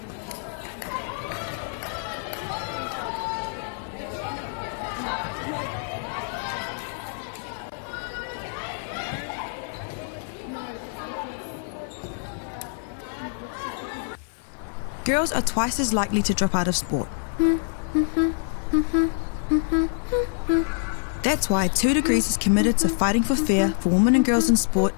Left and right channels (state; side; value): silent; right; digital silence